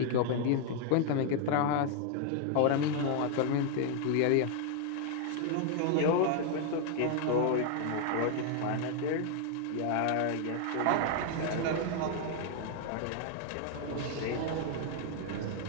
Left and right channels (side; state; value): both; different; correlation 0.00